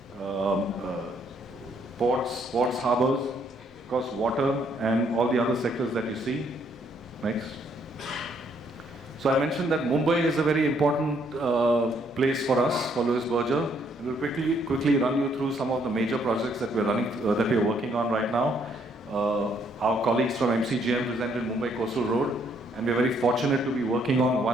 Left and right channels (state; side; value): normal; both; correlation 0.69